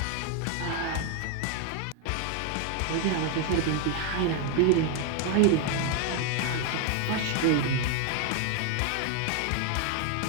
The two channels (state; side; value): different; both; correlation 0.01